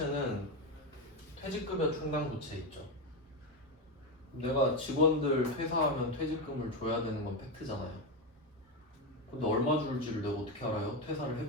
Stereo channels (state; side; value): normal; both; correlation 0.11